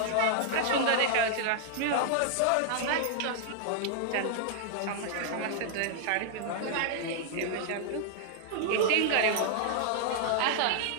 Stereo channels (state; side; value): different; both; correlation -0.01